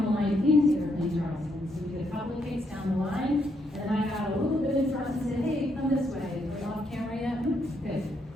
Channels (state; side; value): normal; both; correlation 0.76